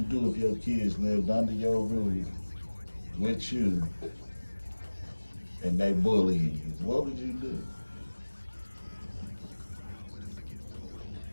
do if your kids lived under your roof with you and they bullying you? What would you do?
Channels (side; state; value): both; inverted; correlation -1.00